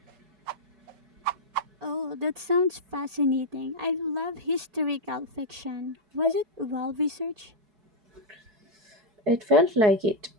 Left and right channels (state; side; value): late; left; 5.2 ms